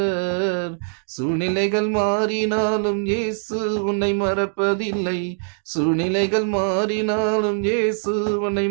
சூழ்நிலைகள் மாறினாலும் இயேசு உன்னை மறப்பதில்லை, சூழ்நிலைகள் மாறினாலும் இயேசு உன்னை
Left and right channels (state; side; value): silent; left; digital silence